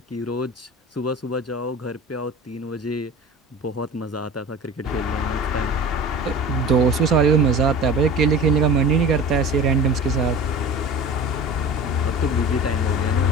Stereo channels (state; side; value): normal; both; correlation 0.36